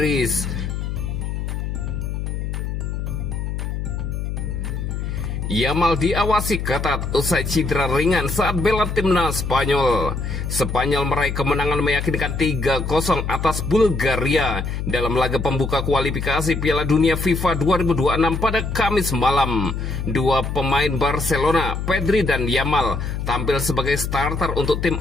Yamal diawasi ketat usai cedera ringan saat bela timnas Spanyol. Spanyol meraih kemenangan meyakinkan 3-0 atas Bulgaria dalam laga pembuka kualifikasi Piala Dunia FIFA 2026 pada Kamis malam. Dua pemain Barcelona, Pedri dan Yamal, tampil sebagai starter untuk tim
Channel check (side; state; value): left; noise; hum, 3 dB below the sound